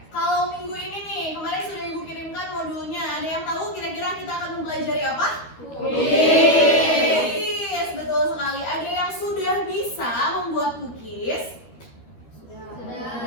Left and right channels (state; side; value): late; right; 13 ms